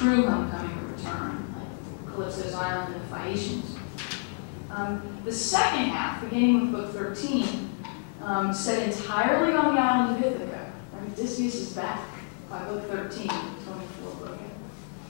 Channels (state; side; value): silent; right; 59 dB below the other